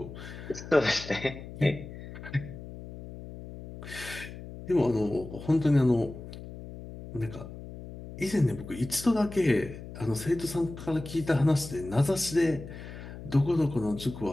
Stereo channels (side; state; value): left; noise; hum, 13 dB below the sound